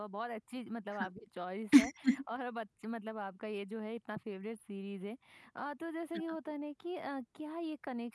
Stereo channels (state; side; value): identical; both; correlation 1.00